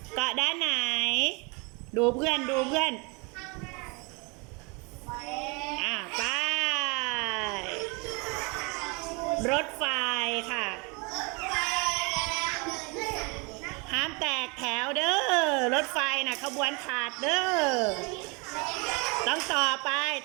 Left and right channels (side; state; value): left; quieter; 30.2 dB